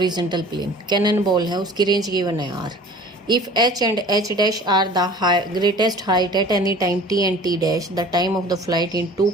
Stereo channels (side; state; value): both; normal; correlation 0.45